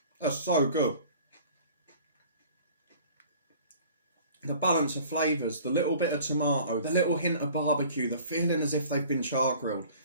That's so good. The balance of flavours, the little bit of tomato, the little hint of barbecue, the feeling as if they've been char grilled.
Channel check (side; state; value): both; inverted; correlation -0.48